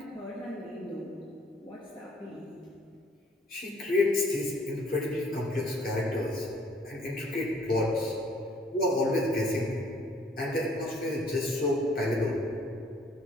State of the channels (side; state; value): both; normal; correlation 0.61